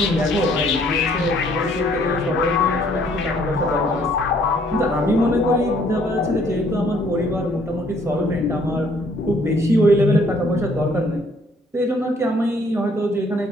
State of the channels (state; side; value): normal; both; correlation 0.63